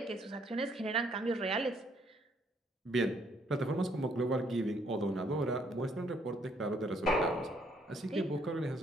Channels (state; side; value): normal; both; correlation 0.67